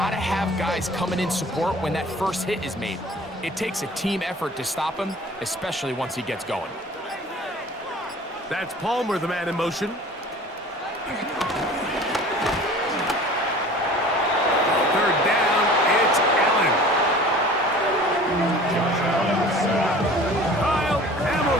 have guys coming in support when that first hit is made. It takes a team effort to stop him, especially once he gets going. That's Palmer, the man in motion. Third down, it's Allen. Kyle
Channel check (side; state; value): both; normal; correlation 0.45